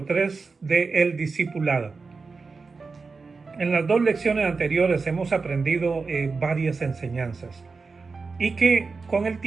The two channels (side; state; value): left; quieter; 4.4 dB